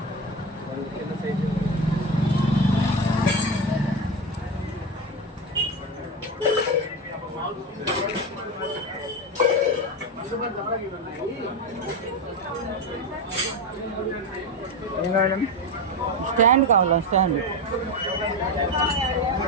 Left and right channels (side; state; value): both; normal; correlation 0.17